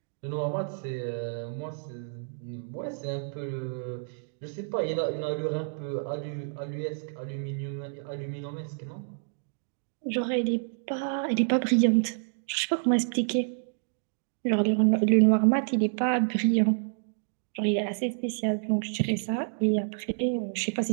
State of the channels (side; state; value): left; silent; digital silence